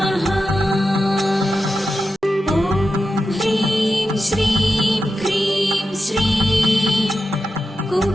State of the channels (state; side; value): normal; both; correlation 0.90